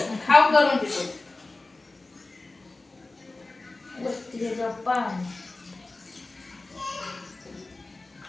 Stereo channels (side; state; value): right; quieter; 3.2 dB